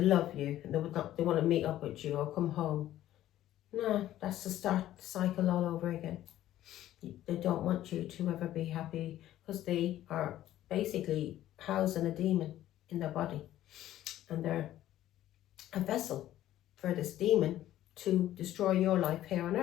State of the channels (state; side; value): quieter; right; 13.3 dB